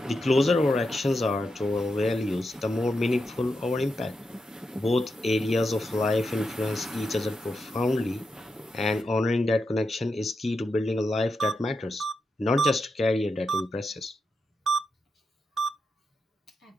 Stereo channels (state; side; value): normal; both; correlation 0.86